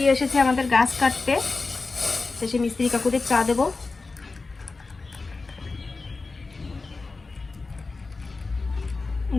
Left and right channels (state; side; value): quieter; right; 3.9 dB